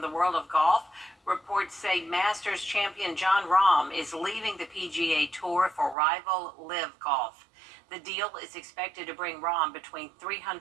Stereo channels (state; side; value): drops out; left; at 6.0 s